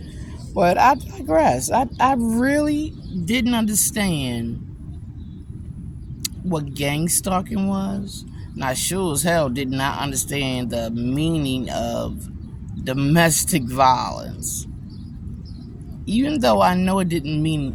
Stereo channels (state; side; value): identical; both; correlation 1.00